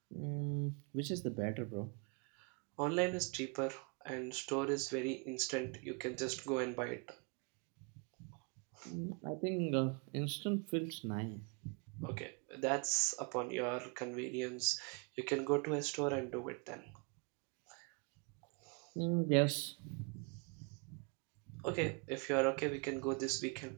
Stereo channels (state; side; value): quieter; left; 34.8 dB